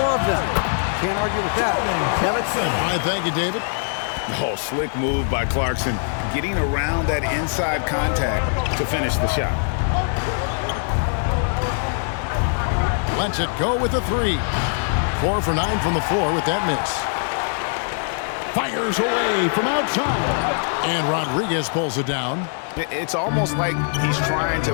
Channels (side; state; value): right; silent; digital silence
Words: of them. Can't argue with that. Kevin? All right, thank you, David. Oh, slick move by Clarkson, getting around that inside contact to finish the shot. Lets it go with a 3. 4 for 9 from the floor with that miss. Fires away from outside. And Rodriguez pulls it down. It's almost like he's trying to